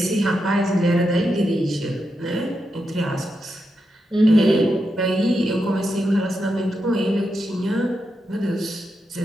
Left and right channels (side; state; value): both; normal; correlation 0.86